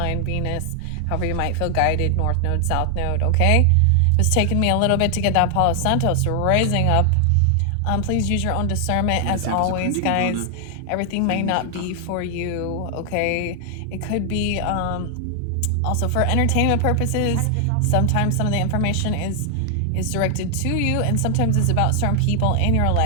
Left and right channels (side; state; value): both; different; correlation 0.00